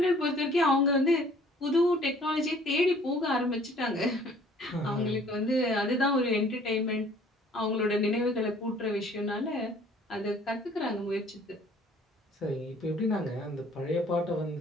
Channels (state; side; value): normal; both; correlation 0.55